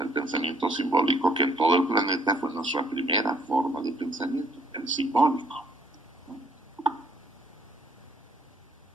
el pensamiento simbólico, que en todo el planeta fue nuestra primera forma de pensamiento, el simbólico.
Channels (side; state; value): both; normal; correlation 0.64